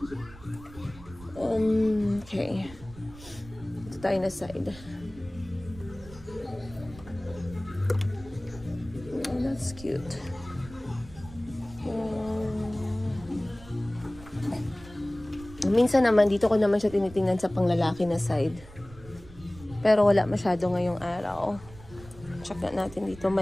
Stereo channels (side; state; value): right; noise; rumble, 18 dB below the sound